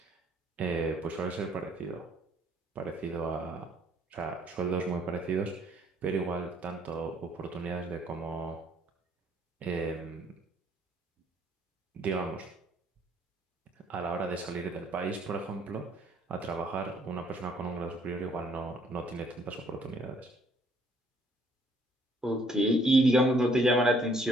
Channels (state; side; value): normal; both; correlation 0.64